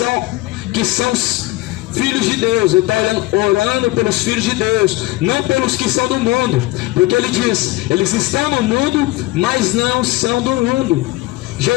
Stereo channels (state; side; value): quieter; right; 19.4 dB